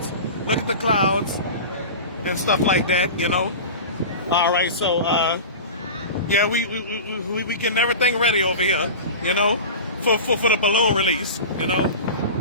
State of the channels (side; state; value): both; inverted; correlation -0.31